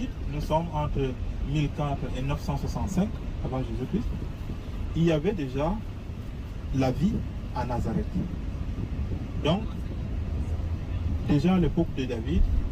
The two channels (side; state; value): both; identical; correlation 1.00